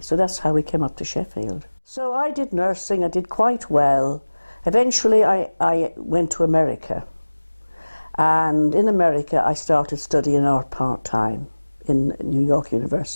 so that's how we came up to Sheffield. So I did nursing, I did quite well. Eventually I went to America, and in America I started studying art part-time in New York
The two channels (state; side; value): inverted; both; correlation -1.00